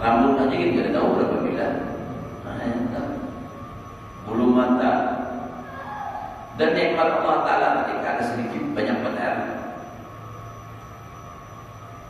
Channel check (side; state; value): both; identical; correlation 1.00